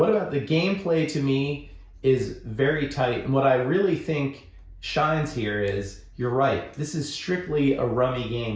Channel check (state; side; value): identical; both; correlation 1.00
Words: about the gameplay? To me, is very tight. And what I really think shines here is, you're right, this is strictly a rummy